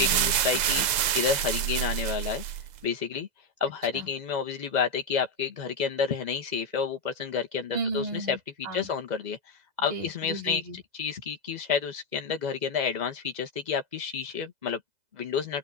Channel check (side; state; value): left; late; 2.0 ms